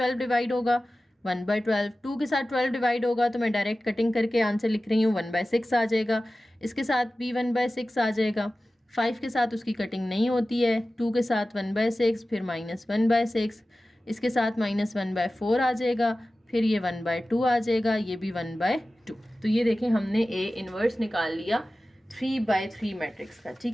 डिवाइड होगा 1/12, 2 के साथ 12 डिवाइड होगा तो मैं डायरेक्ट कटिंग करके आंसर लिख रही हूँ 1/6 आ जाएगा, इसके साथ भी 1/6 आ जाएगा, 5 के साथ उसकी कटिंग नहीं होती है, 2 के साथ 1/6, फिर -1/6, इसके साथ -1/4 आ जाएगा, फिर ये 1/2 आ जाएगा, ये भी 1/2। तो ये देखें हमने A इनवर्स निकाल लिया 3/3 मैट्रिक्स का,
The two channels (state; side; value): normal; both; correlation 0.96